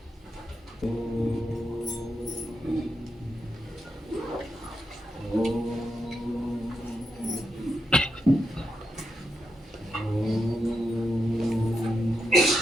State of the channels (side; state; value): both; normal; correlation 0.84